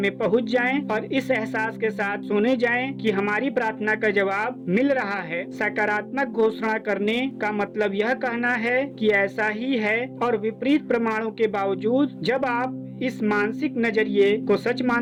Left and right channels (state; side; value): identical; both; correlation 1.00